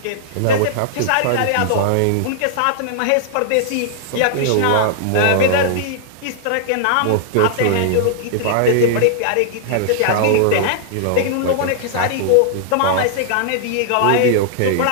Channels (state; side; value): different; both; correlation -0.01